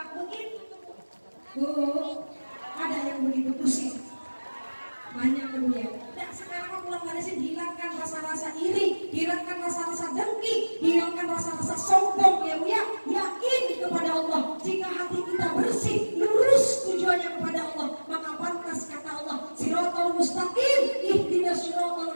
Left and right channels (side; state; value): both; inverted; correlation -1.00